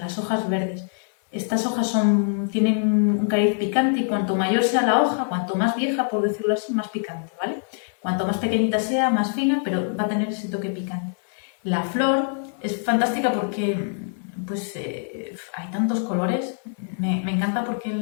hojas verdes. Estas hojas tienen un cariz picante y cuanto mayor sea la hoja, cuanto más vieja, por decirlo así, más picante, ¿vale? Cuanto más pequeñita sea, más fina, pero va a tener ese toque picante. La flor es fantástica porque pues, hay tantos colores. Me encanta porque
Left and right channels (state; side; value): silent; right; 63 dB below the other